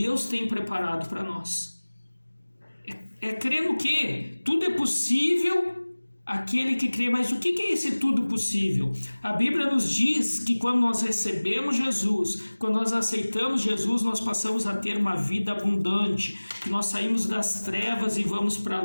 tem preparado para nós. É crer no quê? Tudo é possível àquele que crê. Mas o que é esse tudo possível? A Bíblia nos diz que quando nós recebemos Jesus, quando nós aceitamos Jesus, nós passamos a ter uma vida abundante, que nós saímos das trevas e vamos para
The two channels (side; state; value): both; inverted; correlation -1.00